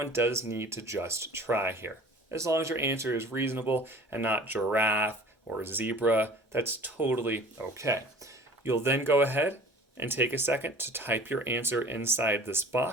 does need to just try here. As long as your answer is reasonable and not giraffe or zebra, that's totally okay. You'll then go ahead and take a second to type your answer inside this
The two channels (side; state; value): both; normal; correlation 0.45